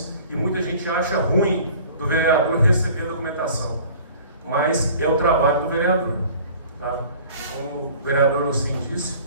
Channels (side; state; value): both; inverted; correlation -0.47